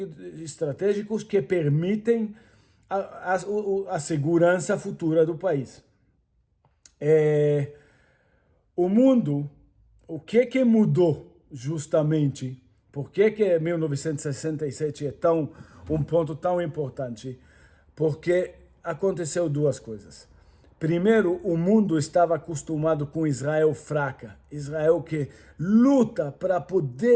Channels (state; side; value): identical; both; correlation 1.00